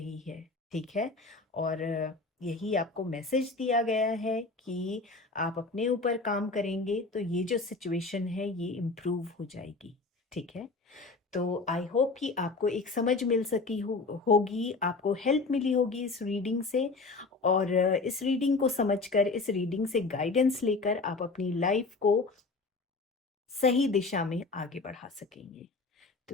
है। ठीक है, और यही आपको मैसेज दिया गया है कि आप अपने ऊपर काम करेंगे तो ये जो सिचुएशन है ये इम्प्रूव हो जाएगी। ठीक है, तो आई होप कि आपको एक समझ मिल सकी होगी, आपको हेल्प मिली होगी इस रीडिंग से, और इस रीडिंग को समझकर, इस रीडिंग से गाइडेंस लेकर आप अपनी लाइफ को सही दिशा में आगे बढ़ा सकेंगे। तो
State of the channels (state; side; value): quieter; right; 3.8 dB